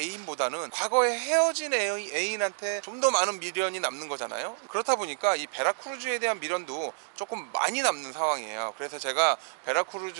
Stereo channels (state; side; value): silent; left; digital silence